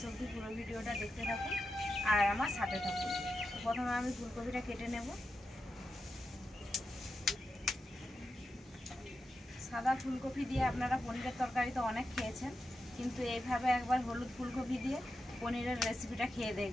অবধি পুরো ভিডিওটা দেখতে থাকুন আর আমার সাথে থাকুন। তো প্রথমে আমি ফুলকপিটা কেটে নেব। সাদা ফুলকপি দিয়ে আপনারা পনিরের তরকারি তো অনেক খেয়েছেন, কিন্তু এইভাবে একবার হলুদ ফুলকপি দিয়ে পনিরের রেসিপিটা খেয়ে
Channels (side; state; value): both; normal; correlation 0.89